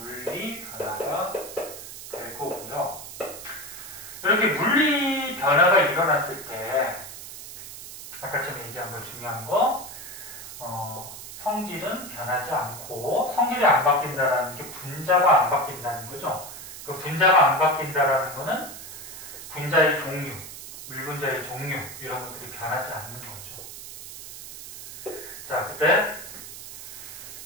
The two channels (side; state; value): right; noise; hiss, 12 dB below the sound